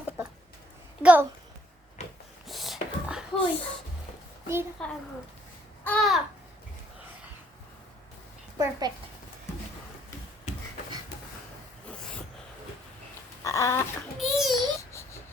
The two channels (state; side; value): normal; both; correlation 0.66